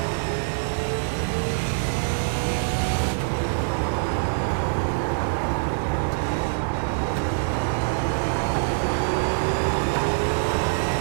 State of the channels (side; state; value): left; silent; digital silence